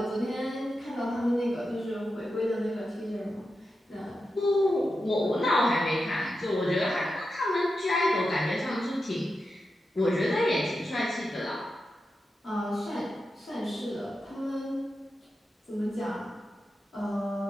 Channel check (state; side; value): normal; both; correlation 0.89